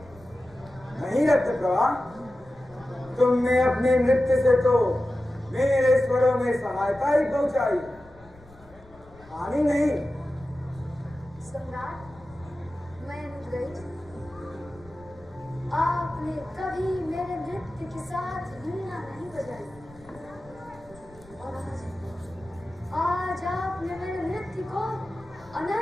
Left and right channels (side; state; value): left; noise; rumble, 24 dB below the sound